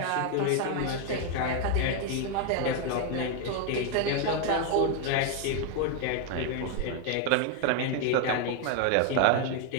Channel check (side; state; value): both; different; correlation 0.01